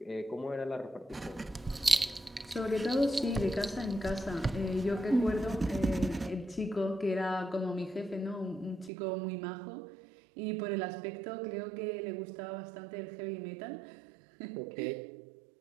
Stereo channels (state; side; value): drops out; left; at 8.9 s